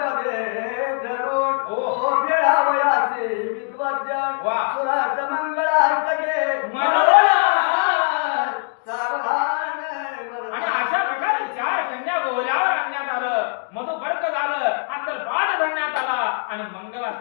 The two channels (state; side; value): silent; right; 56 dB below the other